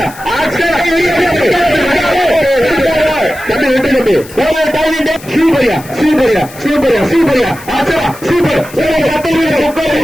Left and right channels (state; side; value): noise; left; hiss, 19 dB below the sound